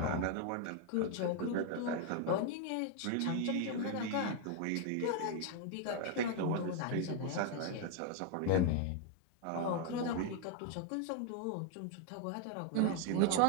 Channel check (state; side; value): different; both; correlation 0.01